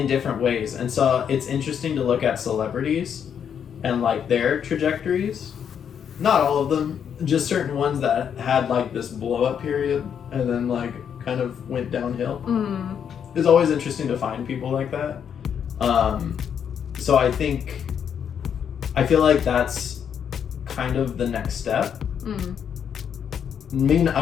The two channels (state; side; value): quieter; right; 8.1 dB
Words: different ways. And so it's interesting to look at celebrities and like their trajectories. Not all of them, just certain ones that had like this blow up period and then like kind of went downhill. It's always interesting to find people like that. So I feel like that's kind of the next step. I mean,